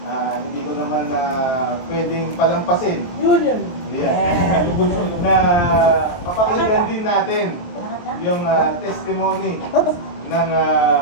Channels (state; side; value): late; right; 23 ms